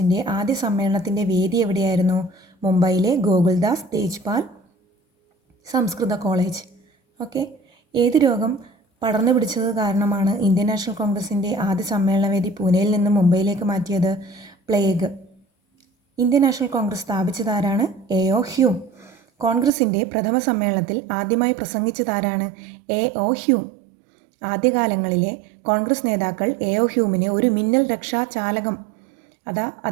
ആദ്യ സമ്മേളനത്തിൻ്റെ വേദി എവിടെയായിരുന്നു? മുംബൈയിലെ ഗോകുൽദാസ് തേജ്പാൽ സംസ്കൃത കോളേജ്. ഓക്കെ. ഏത് രോഗം പടർന്നു പിടിച്ചത് കാരണമാണ് ഇന്ത്യൻ നാഷണൽ കോൺഗ്രസിൻ്റെ ആദ്യ സമ്മേളനവേദി പൂനെയിൽ നിന്ന് മുംബൈയിലേക്ക് മാറ്റിയത്? പ്ലേഗ്. ഇന്ത്യൻ നാഷണൽ കോൺഗ്രസ് സ്ഥാപിച്ചതാരാണ്? A.O. ഹ്യൂം. കോൺഗ്രസിൻ്റെ പ്രഥമ സമ്മേളനത്തിൽ ആദ്യമായി പ്രസംഗിച്ചതാരാണ്? A.O. ഹ്യൂം. ആദ്യകാലങ്ങളിലെ കോൺഗ്രസ് നേതാക്കൾ A.O. ഹ്യൂമിനെ ഒരു മിന്നൽ രക്ഷാ ചാലകം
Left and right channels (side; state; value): left; drops out; at 19.7 s